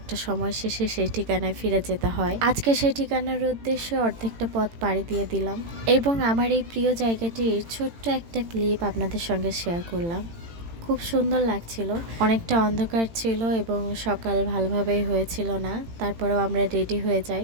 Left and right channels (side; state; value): left; late; 18 ms